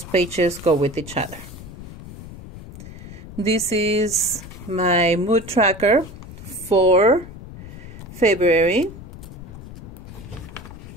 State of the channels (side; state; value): left; noise; rumble, 14 dB below the sound